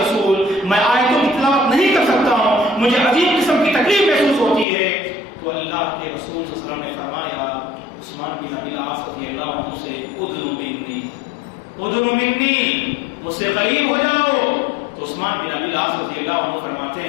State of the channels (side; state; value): right; drops out; at 4.7 s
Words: میں آیتوں کی تلاوت نہیں کر سکتا ہوں، مجھے عجیب قسم کی تکلیف محسوس ہوتی ہے۔ تو اللہ کے رسول صلی اللہ علیہ وسلم نے فرمایا عثمان بن ابی العاص رضی اللہ عنہ سے ادنو منی، ادنو منی، مجھ سے قریب ہو جاؤ۔ تو عثمان بن ابی العاص